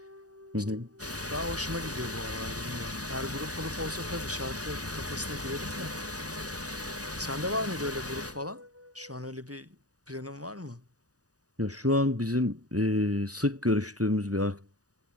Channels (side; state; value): left; late; 0.67 ms